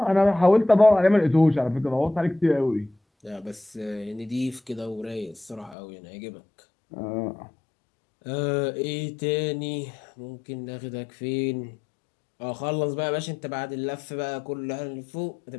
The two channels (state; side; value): drops out; right; at 5.8 s